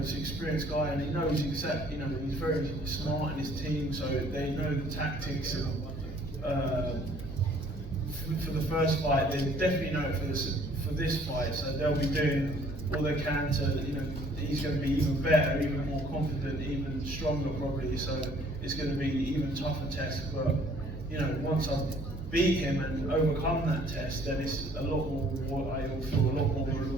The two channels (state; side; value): normal; both; correlation 0.58